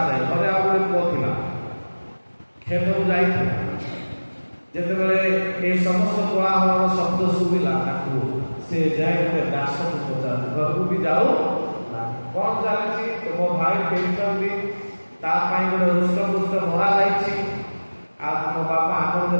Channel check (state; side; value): inverted; both; correlation -1.00